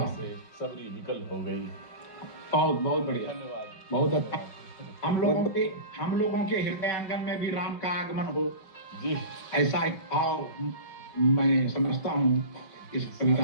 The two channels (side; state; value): right; late; 5.2 ms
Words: से सबरी विकल हो गई। बहुत बहुत बढ़िया, धन्यवाद, बहुत अच्छा। हम लोगों के हृदय आंगन में भी राम का आगमन हो जी, ऐसा एक भाव मैं समझता हूँ इस